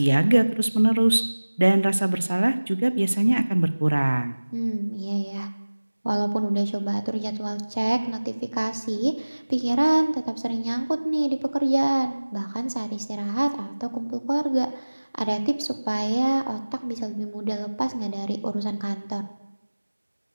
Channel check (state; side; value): inverted; both; correlation -1.00